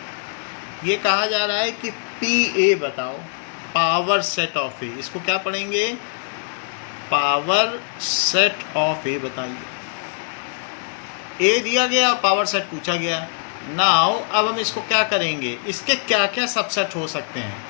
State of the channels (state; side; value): silent; right; 55 dB below the other